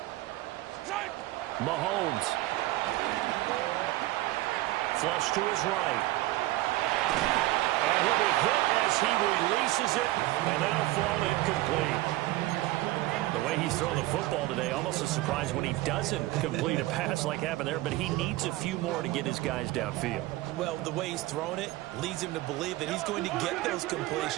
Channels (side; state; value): left; quieter; 17.9 dB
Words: Mahomes. Flush to his right. And he'll be hit as he releases it, and that'll fall incomplete. The way he's throwing the football today, almost a surprise when he doesn't complete a pass like happened there, but he needs a few more to get his guys downfield. Well, the way he's thrown it leads him to believe that he's going to get those